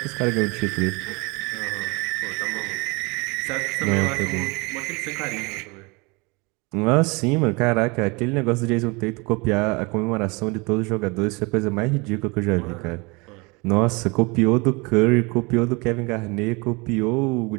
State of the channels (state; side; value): quieter; left; 27.4 dB